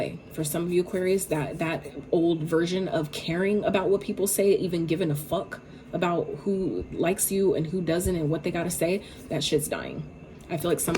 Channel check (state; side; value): identical; both; correlation 1.00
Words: For some of you Aquarius, that old version of caring about what people say, even giving a fuck about who likes you and who doesn't and what they got to say, that shit's dying. I feel like some